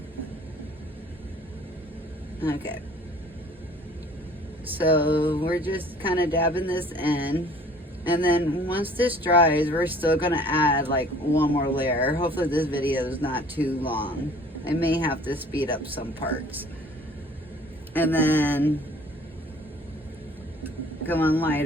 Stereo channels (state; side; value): normal; both; correlation 0.52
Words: Okay, so we're just kind of dabbing this in, and then once this dries, we're still gonna add like one more layer. Hopefully this video is not too long. I may have to speed up some parts. And then going